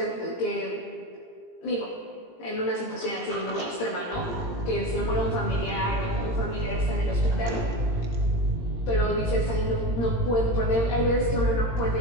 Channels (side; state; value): right; late; 17 ms